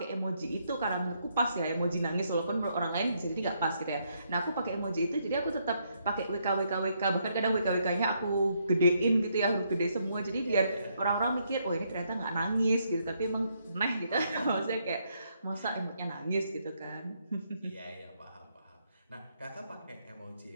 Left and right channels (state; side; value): inverted; both; correlation -0.75